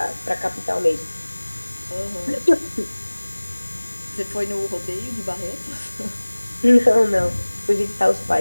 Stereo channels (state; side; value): inverted; both; correlation -1.00